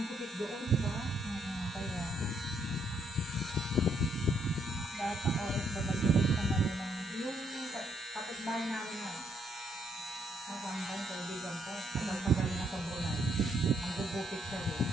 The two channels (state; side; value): normal; both; correlation 0.72